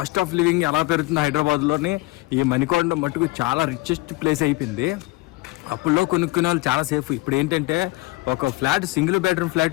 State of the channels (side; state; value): right; quieter; 21.7 dB